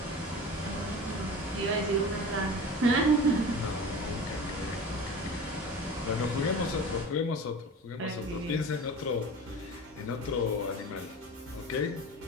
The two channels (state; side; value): normal; both; correlation 0.35